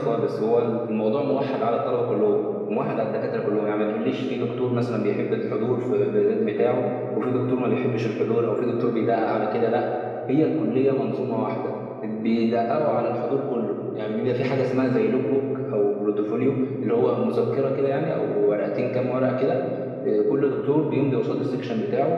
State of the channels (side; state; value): both; identical; correlation 1.00